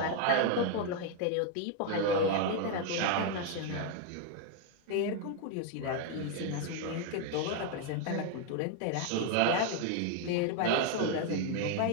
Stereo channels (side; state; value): both; different; correlation 0.00